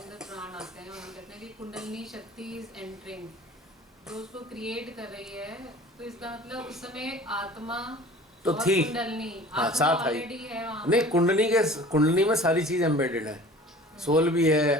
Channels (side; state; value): both; normal; correlation 0.44